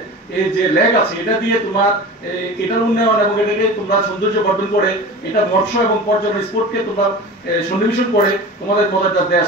এই যে লেক আছে, এটা দিয়ে তোমার এটার উন্নয়ন এবং এটাকে তোমরা সৌন্দর্য বর্ধন করে এটা মৎস্য এবং পর্যটন স্পোর্টকে তোমরা সন্নিবেশন করে তোমাদের মজাদার দেশ,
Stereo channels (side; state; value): both; normal; correlation 0.34